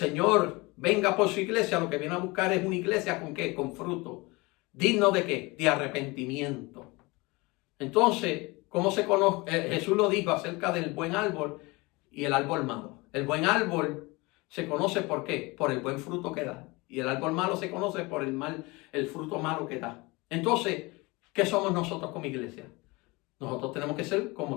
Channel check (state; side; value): quieter; right; 24.3 dB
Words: venga por su iglesia, lo que viene a buscar es una iglesia ¿con qué? Con fruto. ¿Digno de qué? De arrepentimiento. Entonces, ¿cómo se conoce? Jesús lo dijo acerca del buen árbol y el árbol malo. El buen árbol se conoce ¿por qué? Por el buen fruto que da. Y el árbol malo se conoce por el fruto malo que da. Entonces, ¿qué somos nosotros como iglesia? Nosotros tenemos que ser